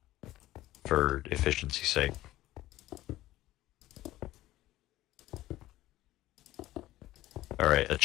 For efficiency's sake. Alright, a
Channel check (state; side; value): quieter; right; 15.9 dB